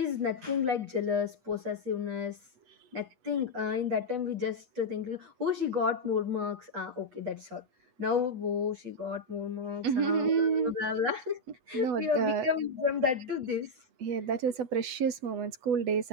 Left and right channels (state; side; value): late; left; 8.1 ms